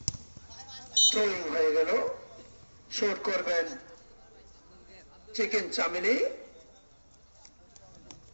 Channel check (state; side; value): inverted; both; correlation -1.00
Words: থ্রোয়িং হয়ে গেল, শট করবেন চিকেন চামিলি।